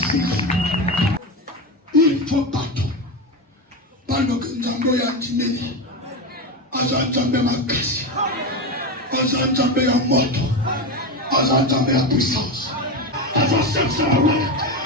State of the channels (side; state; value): both; normal; correlation 0.17